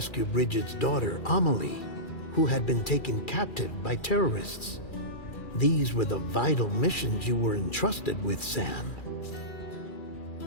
Bridget's daughter, Amelie, who had been taken captive by terrorists. These were the vital missions you were entrusted with, Sam.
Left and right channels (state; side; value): late; right; 2.4 ms